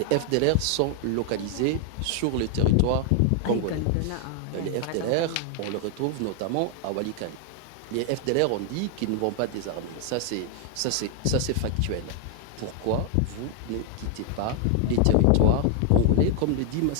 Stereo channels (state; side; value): different; both; correlation 0.00